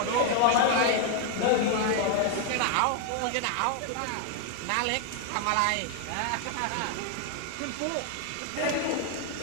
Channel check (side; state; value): both; different; correlation 0.00